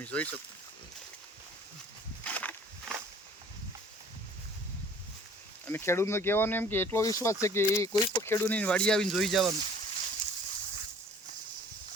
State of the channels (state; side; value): normal; both; correlation 0.52